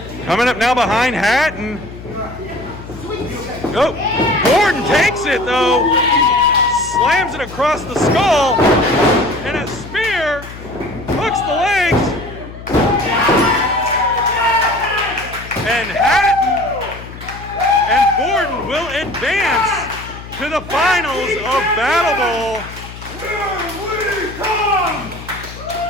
Coming up now behind Hatton. Oh, Gordon takes it though. Slams it across the skull. And a spear hooks the legs. And Hatton and Gordon will advance to the finals of BattleBowl.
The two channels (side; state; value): left; noise; hum, 14 dB below the sound